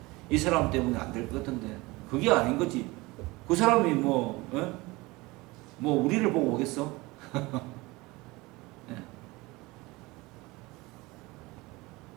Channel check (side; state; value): left; quieter; 22.3 dB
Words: 이 사람 때문에 안 될 것 같은데 그게 아닌 거지. 그 사람이 뭐 우리를 보고 오겠어?